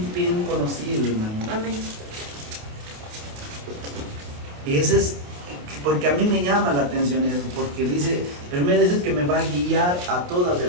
bien conocido, hermano. Amén. Y ese es, porque a mí me llama la atención eso, porque dice, primero dice que me va a guiar a toda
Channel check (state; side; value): late; left; 28 ms